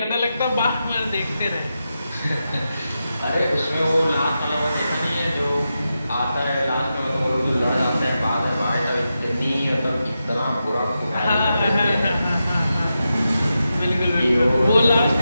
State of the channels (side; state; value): both; inverted; correlation -0.89